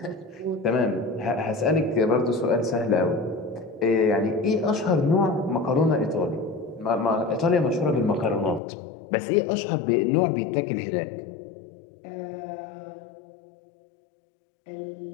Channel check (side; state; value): right; drops out; at 8.6 s